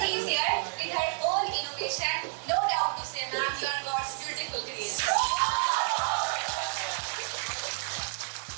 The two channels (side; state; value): left; silent; 58 dB below the other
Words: No doubt to say, ma'am, you are God's beautiful creation.